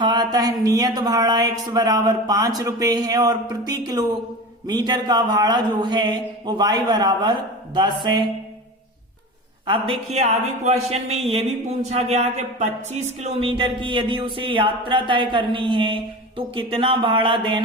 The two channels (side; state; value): both; normal; correlation 0.30